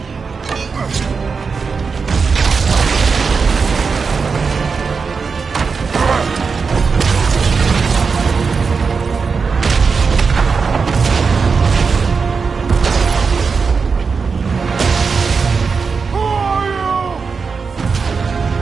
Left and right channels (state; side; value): quieter; left; 5.2 dB